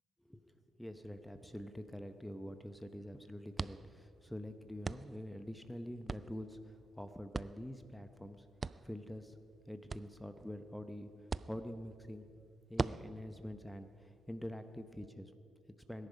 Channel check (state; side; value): normal; both; correlation 0.94